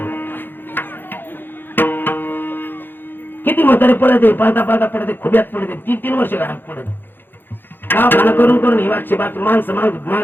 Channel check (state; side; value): late; right; 0.098 ms